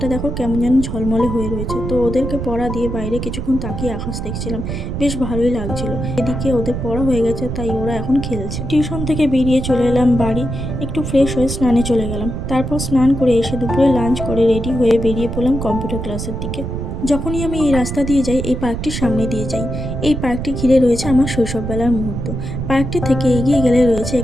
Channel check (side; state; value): right; noise; rumble, 5 dB below the sound